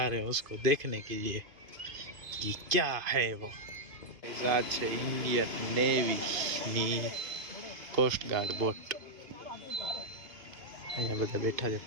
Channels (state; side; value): late; left; 2.5 ms